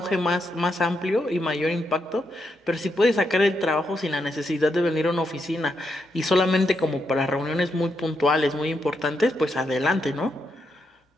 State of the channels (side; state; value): both; normal; correlation 0.81